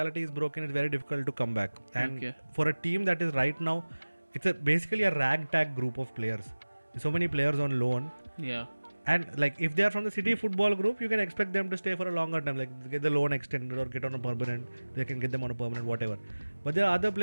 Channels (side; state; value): both; inverted; correlation -1.00